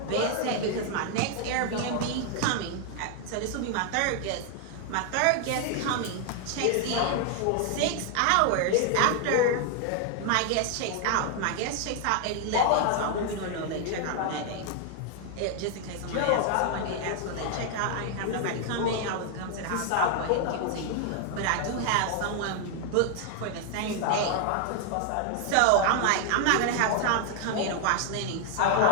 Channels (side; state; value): both; different; correlation 0.00